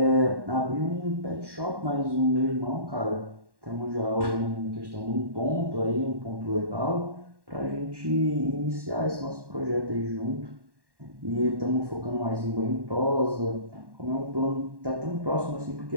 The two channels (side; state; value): left; late; 1.1 ms